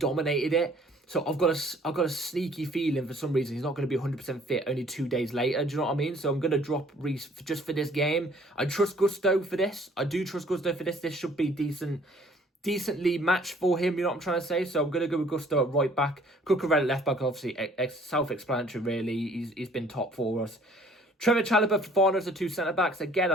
it. So I've got a sneaky feeling for some reason he's not going to be 100% fit only 2 days later. Do you know what I mean? So I'm going to drop Reece just for this game. I trust Gusto for this. I do trust Gusto for this. This should be decently matched for him, you know what I'm trying to say? So I'm going to go with Gusto at right back. Cucurella left back, obviously, self-explanatory, really. He's been top for us. Trevor Chalobah, Fofana as the 2 centre-backs. Again,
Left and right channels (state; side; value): normal; both; correlation 0.57